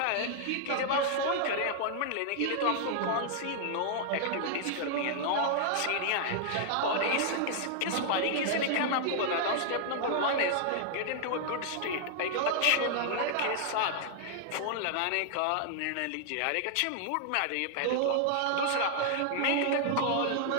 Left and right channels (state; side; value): different; both; correlation -0.01